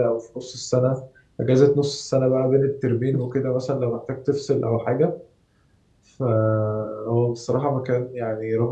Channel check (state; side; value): identical; both; correlation 1.00